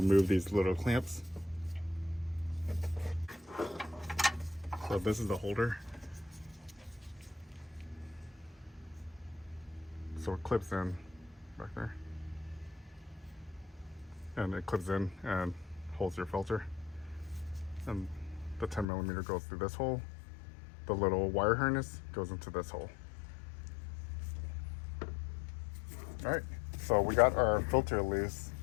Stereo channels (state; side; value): drops out; right; at 18.9 s